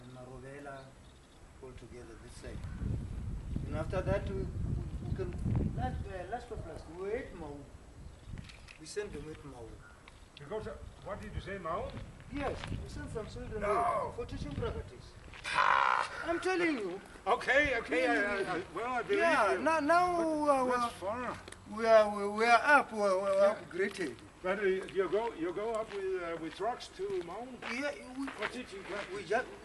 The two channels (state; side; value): identical; both; correlation 1.00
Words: And Marovela, all together this side. And after that, we can, last of last, we were at Mau. We sent them at Mau. Because what did you say, Mao? Yes, we sent some children No. there for teaching practice. I'm telling you. Okay, well, I believe Yeah, you. now That's far. we are upgraded. But you go up with trucks to Mao Yeah, for teaching practice. we just,